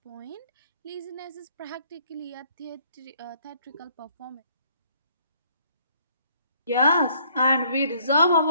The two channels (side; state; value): both; inverted; correlation -0.63